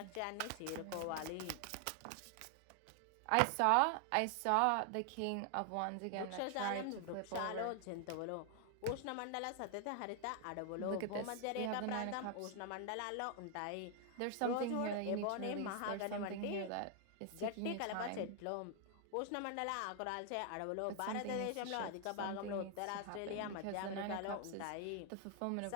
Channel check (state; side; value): different; both; correlation 0.00